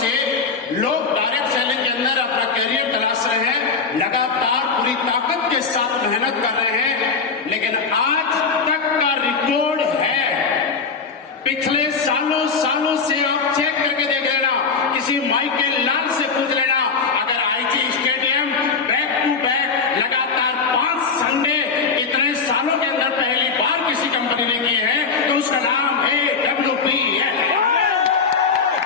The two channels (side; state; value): right; quieter; 5.1 dB